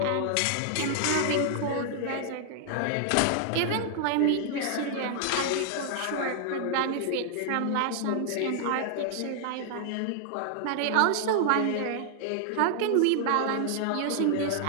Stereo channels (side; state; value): both; different; correlation -0.01